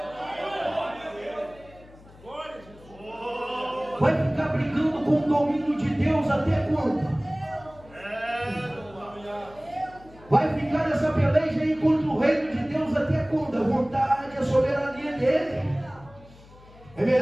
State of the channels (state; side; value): noise; left; hum, 23 dB below the sound